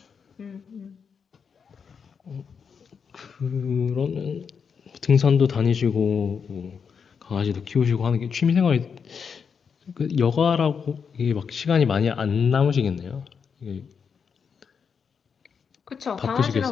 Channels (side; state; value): right; quieter; 6.3 dB